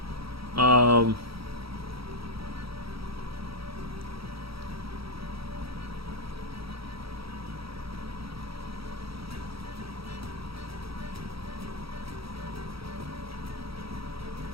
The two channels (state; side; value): late; left; 0.76 ms